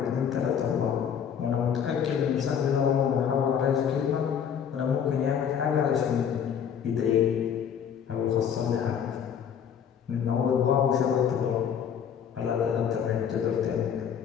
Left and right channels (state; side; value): quieter; right; 8.1 dB